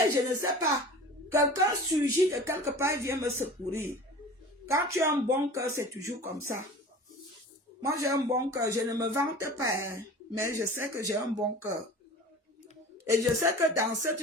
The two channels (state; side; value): normal; both; correlation 0.39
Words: je ne sais pas. Quelqu'un surgit de quelque part et vient me secourir. Quand tu as un bon cœur, c'est toujours comme ça. Moi, j'ai un bon cœur. Je ne me vante pas, hein, mais je sais que j'ai un bon cœur. Et je sais que dans cette